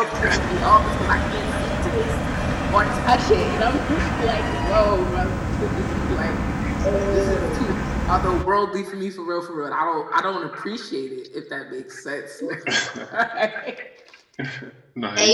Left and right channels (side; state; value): both; identical; correlation 1.00